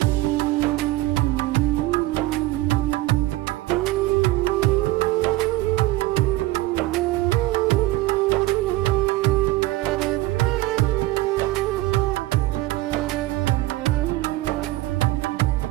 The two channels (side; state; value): left; quieter; 18.0 dB